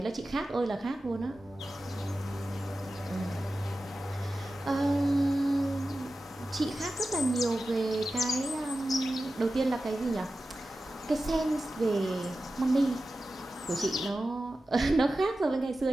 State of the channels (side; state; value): both; normal; correlation 0.93